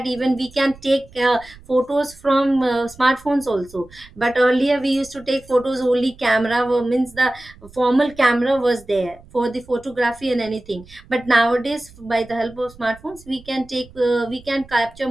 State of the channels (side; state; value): right; noise; rumble, 23 dB below the sound